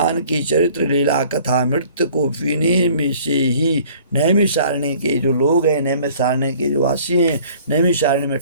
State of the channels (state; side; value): inverted; both; correlation -0.53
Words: की चरित्र लीला कथा अमृत को पीने में से ही नैमिषारण्य के जो लोग हैं, नैमिषारण्य के जो वासी हैं, नैमिषारण्य में